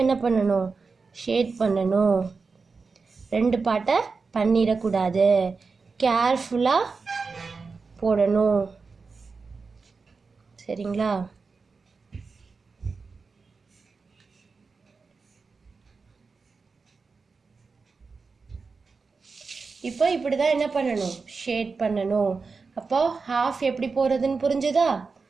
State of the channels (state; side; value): quieter; left; 4.6 dB